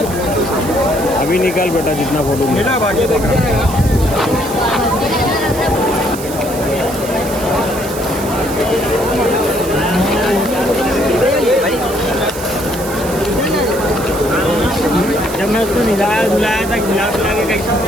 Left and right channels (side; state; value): right; noise; hiss, 12 dB below the sound